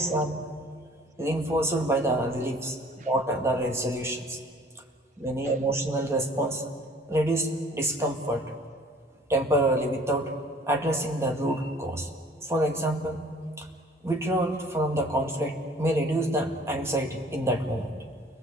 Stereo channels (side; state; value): both; normal; correlation 0.52